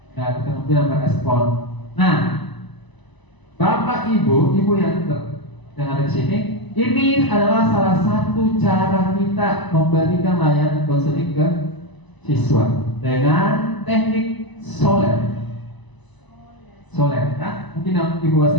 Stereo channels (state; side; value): late; right; 1.0 ms